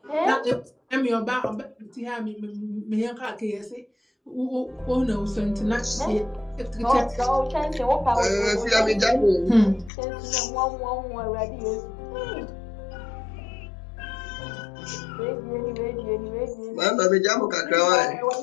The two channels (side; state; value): right; drops out; at 9.9 s